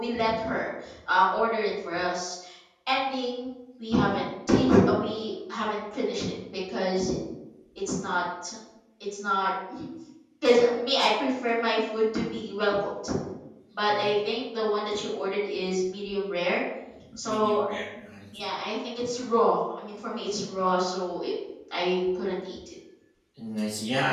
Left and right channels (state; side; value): identical; both; correlation 1.00